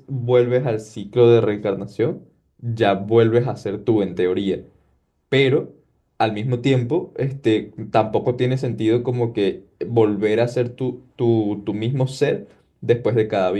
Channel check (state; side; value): identical; both; correlation 1.00